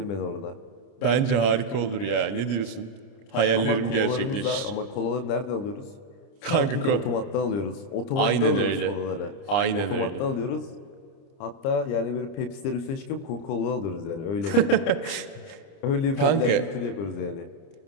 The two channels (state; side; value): late; right; 30 ms